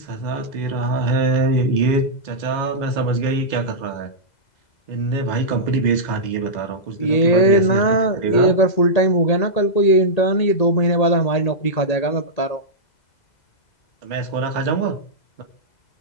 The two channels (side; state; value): right; late; 2.0 ms